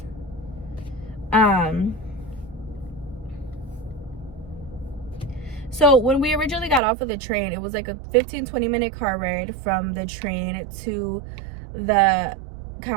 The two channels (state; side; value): drops out; left; at 6.8 s